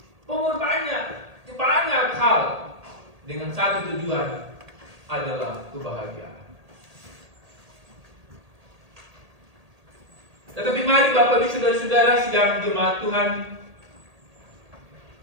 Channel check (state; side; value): late; left; 1.8 ms